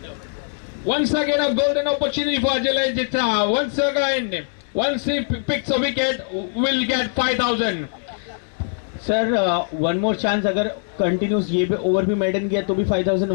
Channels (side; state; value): right; silent; 64 dB below the other